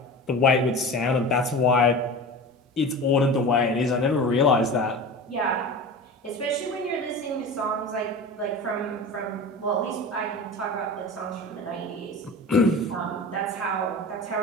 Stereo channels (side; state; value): both; normal; correlation 0.32